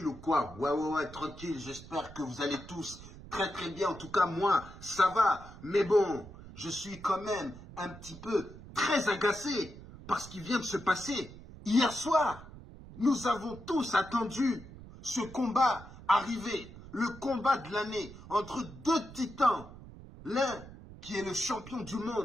ou quoi? Ouais, tranquille. J'espère que vous allez tous très très bien. En tout cas, moi, ça va. Mais bon, je suis quand même un petit peu très agacé par ce qui vient de se passer hier soir. Nous avons tous attendu ce combat arriver. Le combat de l'année entre deux titans. L'un qui est le champion du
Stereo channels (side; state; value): right; noise; rumble, 16 dB below the sound